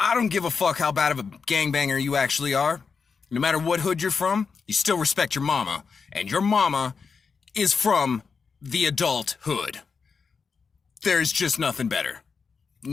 don't give a fuck how bad of a gangbanger you actually are. No matter what hood you're from, you still respect your mama. And your mama is from the adult hood. There's just nothing better.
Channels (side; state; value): right; quieter; 5.4 dB